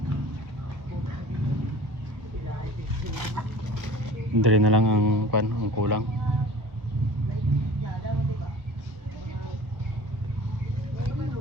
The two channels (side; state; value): left; late; 1.4 ms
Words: Dali na lang ang kulang.